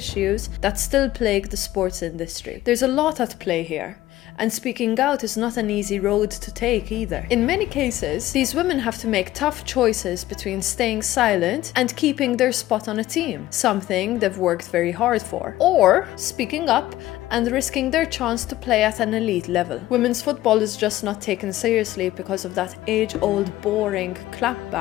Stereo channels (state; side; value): quieter; right; 15.4 dB